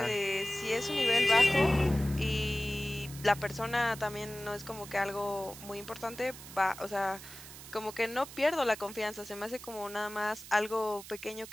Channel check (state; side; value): noise; right; hiss, 15 dB below the sound